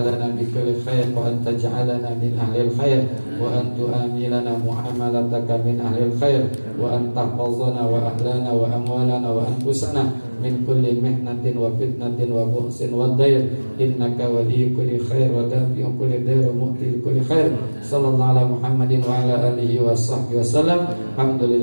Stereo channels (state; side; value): inverted; both; correlation -1.00